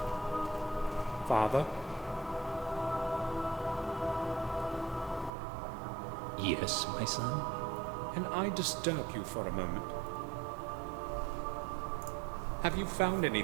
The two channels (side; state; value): left; drops out; at 5.3 s